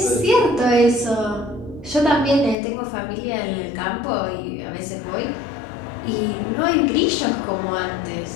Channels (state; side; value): drops out; right; at 2.6 s